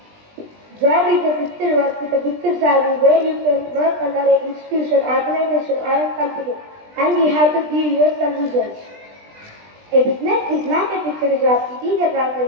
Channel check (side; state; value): left; late; 20 ms